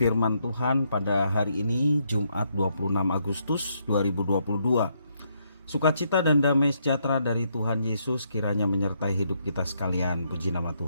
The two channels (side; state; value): both; inverted; correlation -0.75